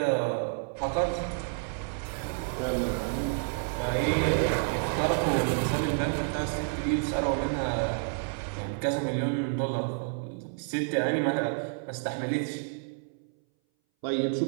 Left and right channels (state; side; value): silent; left; 58 dB below the other